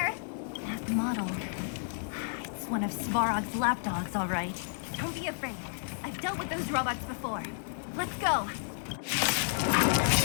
That model. It's one of Svarog's lapdogs, all right. Don't be afraid. I've dealt with those robots before. Let's go.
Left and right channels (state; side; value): silent; right; digital silence